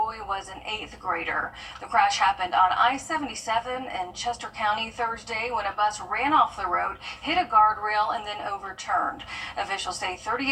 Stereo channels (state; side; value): identical; both; correlation 1.00